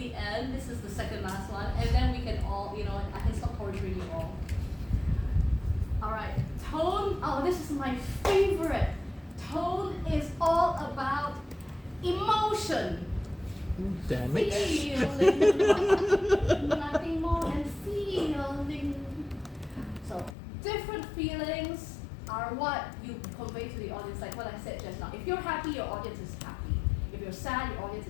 end. This is the second last one. And then we can all, I can stop torturing you all. Alright, tone. Oh, this is my favorite. Tone is all about emotion. Damn it. Feeling. Nothing more than feeling. So, different feelings are what you convey to the audience, like what I said just now. If you're happy, your audience is happy. If you're sad, your audience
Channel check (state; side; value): drops out; right; at 20.4 s